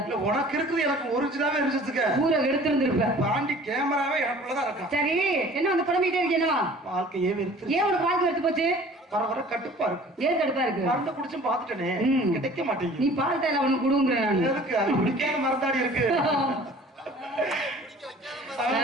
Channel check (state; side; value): normal; both; correlation 0.48